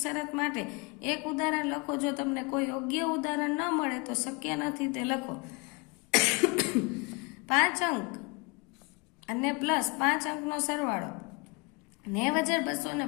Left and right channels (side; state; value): right; quieter; 29.2 dB